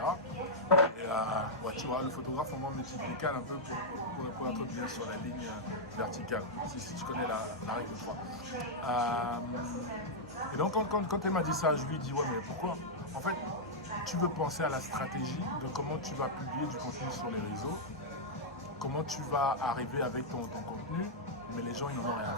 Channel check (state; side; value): normal; both; correlation -0.07